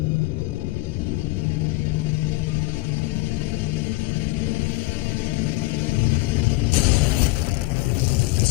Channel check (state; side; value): quieter; right; 20.8 dB